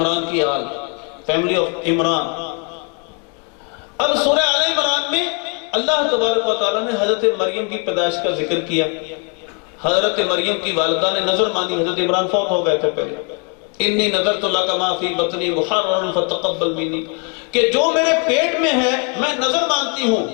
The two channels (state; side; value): quieter; right; 37.2 dB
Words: کی آل، فیملی آف عمران۔ اب سورہ آل عمران میں اللہ تبارک و تعالیٰ نے حضرت مریم کی پیدائش کا ذکر کیا۔ حضرت مریم کی والدہ نے نظر مانی، حضرت عمران فوت ہو گئے تھے پہلے، انی نذرت لک ما فی بطنی محررا فتقبل منی، کہ جو میرے پیٹ میں ہے میں نظر مانتی ہوں،